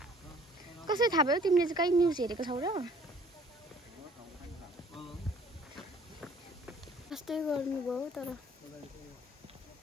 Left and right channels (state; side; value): normal; both; correlation 0.55